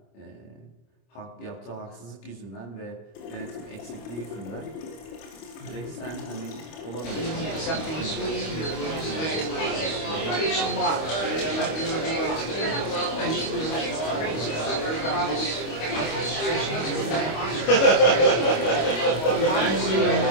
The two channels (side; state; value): right; late; 25 ms